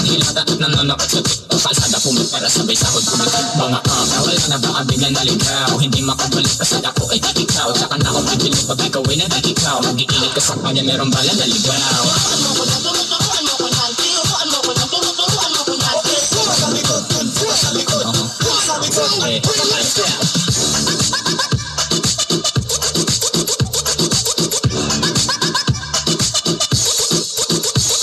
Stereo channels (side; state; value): both; identical; correlation 1.00